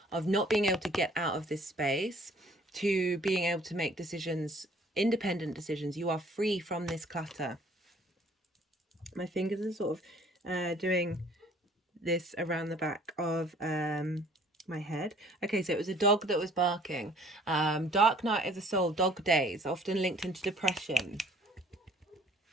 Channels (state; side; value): normal; both; correlation 0.56